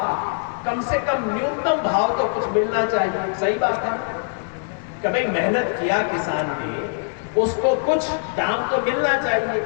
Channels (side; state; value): right; silent; digital silence